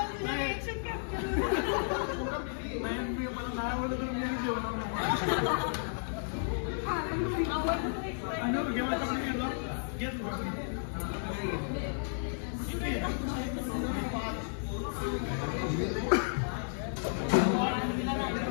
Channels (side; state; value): right; silent; digital silence